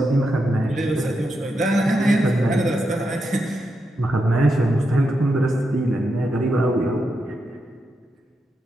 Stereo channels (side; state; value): both; normal; correlation 0.85